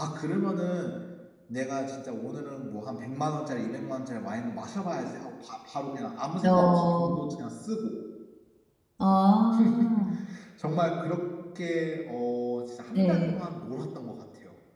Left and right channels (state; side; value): identical; both; correlation 1.00